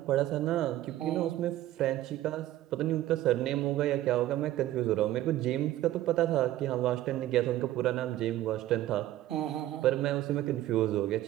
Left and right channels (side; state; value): left; quieter; 14.4 dB